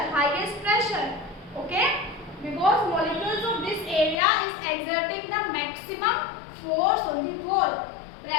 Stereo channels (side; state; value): right; drops out; at 4.2 s